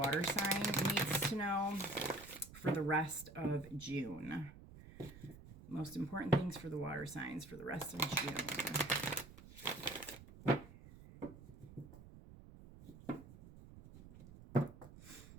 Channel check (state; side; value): noise; right; rumble, 17 dB below the sound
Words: sign needs to know for the rest of June? Most important things for the water signs for the rest of June.